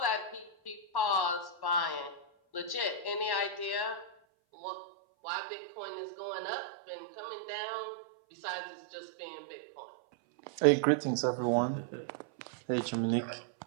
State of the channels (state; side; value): drops out; left; at 4.1 s